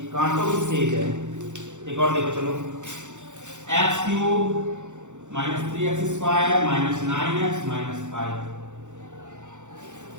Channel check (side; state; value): left; late; 0.85 ms